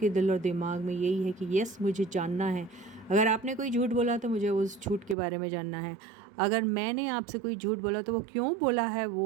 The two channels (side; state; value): left; drops out; at 5.2 s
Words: दिल और दिमाग में यही है कि यस मुझे जानना है। अगर आपने कोई झूठ बोला तो मुझे उस झूठ के बारे में जानना है। अगर मैंने आपसे कोई झूठ बोला तो वो क्यों बोला है